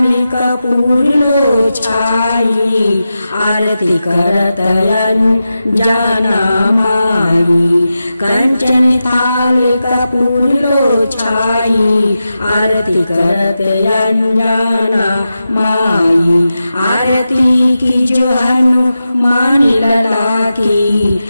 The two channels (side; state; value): both; inverted; correlation -0.91